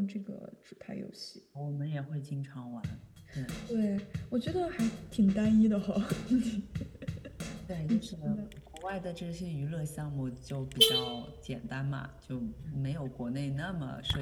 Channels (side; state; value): both; identical; correlation 1.00